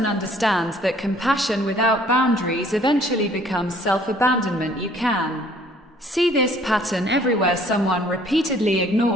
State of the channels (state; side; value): normal; both; correlation 0.58